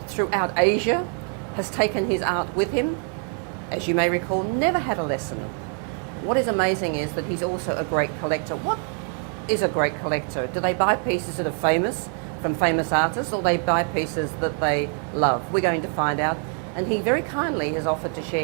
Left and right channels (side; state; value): left; quieter; 38.4 dB